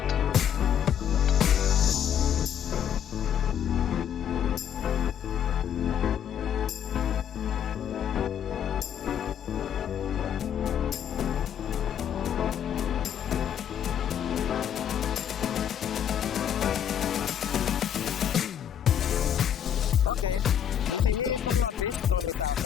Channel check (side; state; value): right; quieter; 9.1 dB